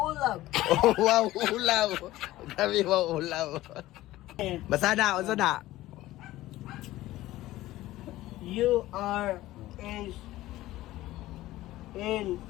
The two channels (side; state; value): right; quieter; 16.3 dB